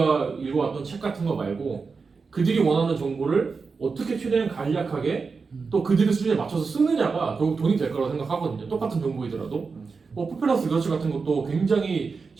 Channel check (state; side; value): quieter; left; 4.8 dB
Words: 읽어왔던 책 같은 거 말고 그들이 원하는 정보를 어떻게 최대한 간략하게 또 그들의 수준에 맞춰서 쓰느냐가 결국 돈이 될 거라고 생각하거든요. 똑같은 정보이더라도 포퓰러스 리서치 같은 것도 굉장히